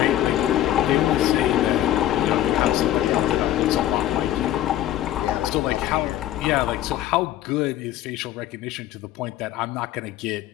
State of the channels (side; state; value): right; quieter; 12.8 dB